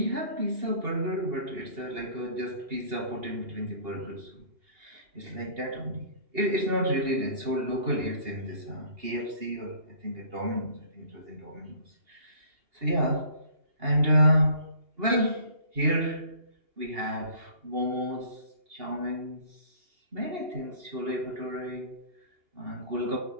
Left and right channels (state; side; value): late; left; 2.8 ms